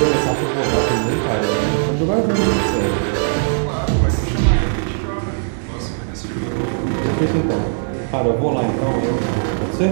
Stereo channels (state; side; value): silent; left; digital silence